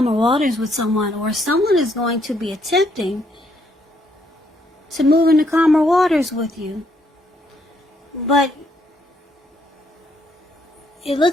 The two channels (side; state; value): both; normal; correlation 0.72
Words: waters with someone, or someone is going to be attempting to move into calmer waters with you. But it